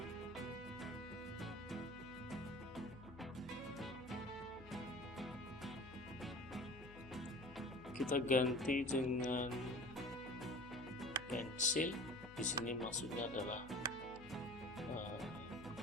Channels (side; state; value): left; noise; hum, 17 dB below the sound